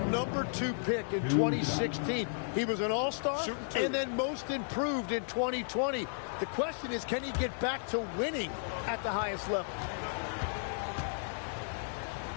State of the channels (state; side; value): silent; right; 55 dB below the other